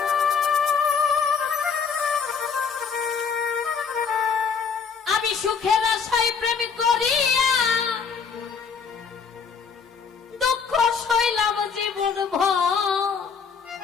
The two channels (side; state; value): right; quieter; 6.0 dB